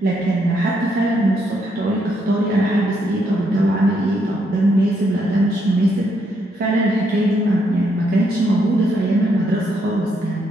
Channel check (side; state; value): both; normal; correlation 0.75